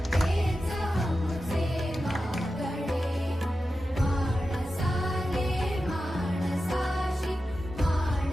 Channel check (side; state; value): both; normal; correlation 0.92